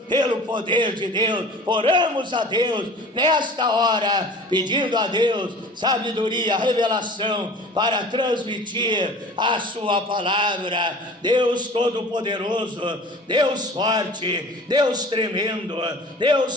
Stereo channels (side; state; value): both; normal; correlation 0.43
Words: pelo poder de Deus. Oramos a Deus nesta hora, pedindo a Deus sabedoria, revelação, para transmitir a sua palavra. Deus Todo-Poderoso, Deus forte, Deus tremendo,